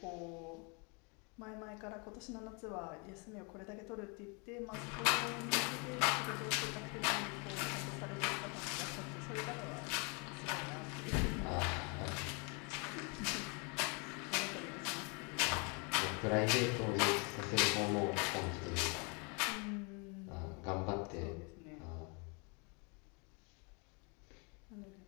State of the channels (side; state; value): right; quieter; 33.5 dB